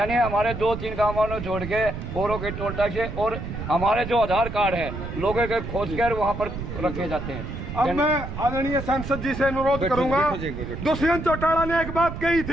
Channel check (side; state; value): right; noise; rumble, 7 dB below the sound